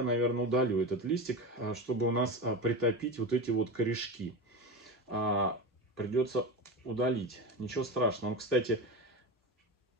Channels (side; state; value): both; normal; correlation 0.23